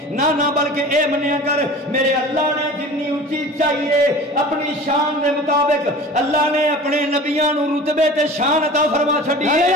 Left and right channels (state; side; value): normal; both; correlation 0.39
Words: نہ بلکہ اے منیا کر میرے اللہ نے جنی اونچی چاہیے اپنی شان دے مطابق اللہ نے اپنے نبیاں نو رتبے تے شان عطا فرما چھڈی ہے.